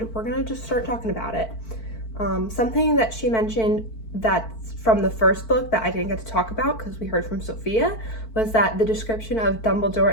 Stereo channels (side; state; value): right; late; 4.5 ms